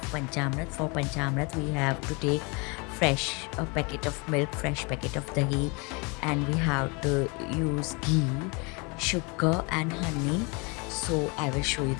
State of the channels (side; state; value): right; quieter; 30.1 dB